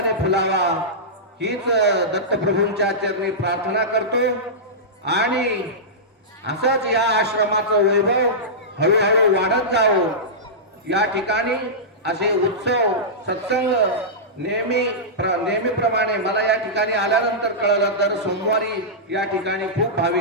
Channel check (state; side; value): normal; both; correlation -0.15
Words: फुलावा हीच दत्तप्रभूंच्या चरणी प्रार्थना करतो. आणि असंच या आश्रमाचं वैभव हळूहळू वाढत जावं. या ठिकाणी असे उत्सव सत्संग नेहमीप्रमाणे मला या ठिकाणी आल्यानंतर कळलं तर सोमवारी या ठिकाणी खूप